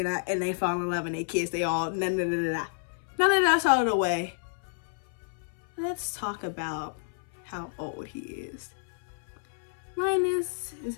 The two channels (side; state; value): right; silent; 58 dB below the other